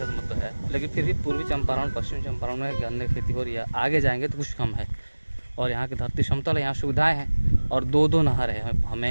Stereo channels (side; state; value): both; inverted; correlation -1.00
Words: तो मतलब है, लेकिन फिर भी पूर्वी चंपारण पश्चिम चंपारण में गन्ने की खेती हो रही है। आगे जाएंगे तो कुछ कम है, और यहाँ की धरती समतल है, यहाँ सुविधाएँ हैं, और दो नहर है